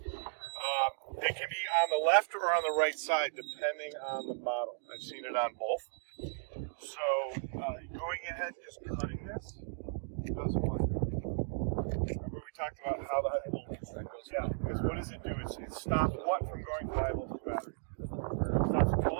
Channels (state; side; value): silent; left; digital silence